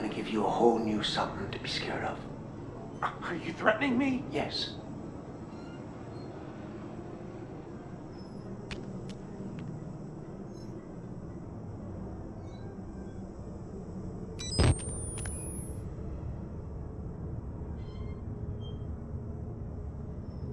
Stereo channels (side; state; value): both; identical; correlation 1.00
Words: give you a whole new something to be scared of. Are you threatening me? Yes.